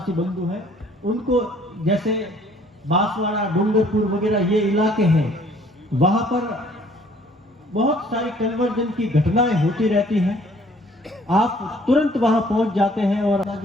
बंधु हैं उनको, जैसे बांसवाड़ा, डूंगरपुर वगैरह ये इलाके हैं, वहां पर बहुत सारी कन्वर्जन की घटनाएं होती रहती हैं। आप तुरंत वहां पहुंच जाते हैं और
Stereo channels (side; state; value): both; normal; correlation 0.58